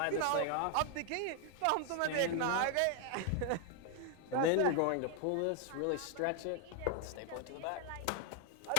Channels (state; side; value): different; both; correlation 0.00